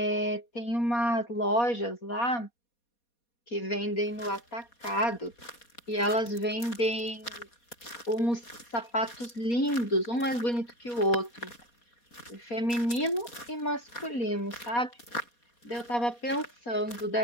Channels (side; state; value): right; late; 4.2 ms